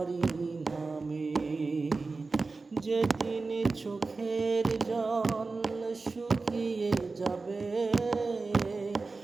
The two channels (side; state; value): left; quieter; 3.9 dB